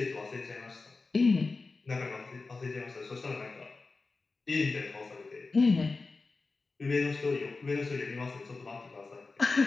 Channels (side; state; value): right; quieter; 3.9 dB